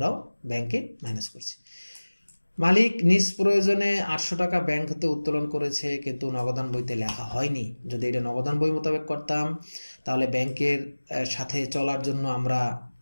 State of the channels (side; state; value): both; inverted; correlation -1.00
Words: ব্যাংকে মাইনাস করছি। মালিক নিজ প্রয়োজনে 800 টাকা ব্যাংক হতে উত্তোলন করেছে কিন্তু নগদান বইতে লেখা হয়নি, যদি এটা নগদান বই মোতাবেক করতাম তাহলে ব্যাংকের সাথে চলার জন্য আমরা